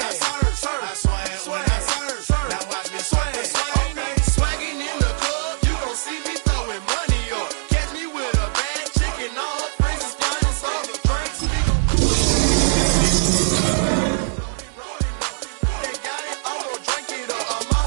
Now watch me swag. Okay. Swagging in the club, you gon' see me throwing money up. Catch me with a bad chick and all her friends is flying off the drinks. They got it, I'm gon' drink it up. I'm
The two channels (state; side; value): silent; left; digital silence